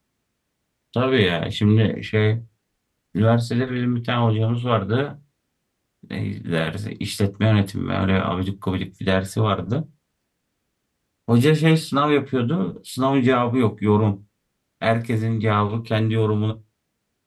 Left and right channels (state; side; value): identical; both; correlation 1.00